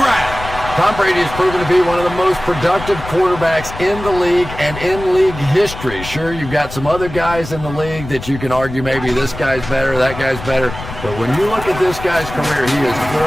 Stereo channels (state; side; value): noise; left; rumble, 11 dB below the sound